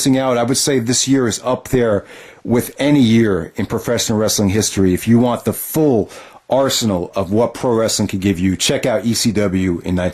out. I would say this year is up there with any year in professional wrestling history. If you want the full arsenal of what pro wrestling could give you, check out ECW in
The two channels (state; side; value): identical; both; correlation 1.00